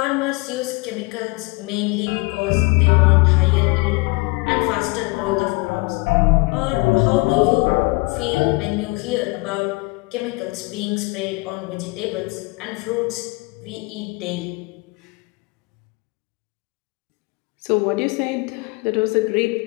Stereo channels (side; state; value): right; quieter; 26.6 dB